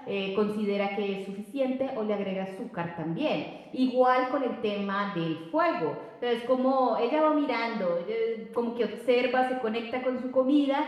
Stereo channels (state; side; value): identical; both; correlation 1.00